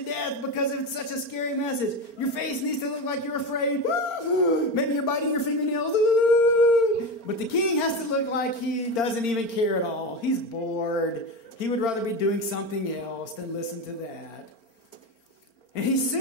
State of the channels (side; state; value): right; late; 4.4 ms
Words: death because it's such a scary message. Your face needs to look like you're afraid. Maybe you're biting your fingernails. But the king has to look like he doesn't even care at all. He's bored. He would rather be doing something else than listen to that. And he